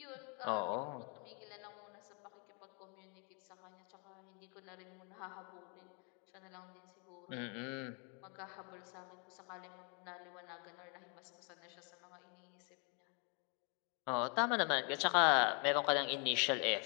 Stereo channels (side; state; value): right; quieter; 36.0 dB